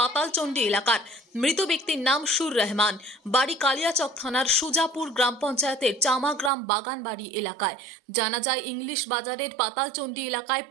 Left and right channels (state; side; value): drops out; left; at 6.5 s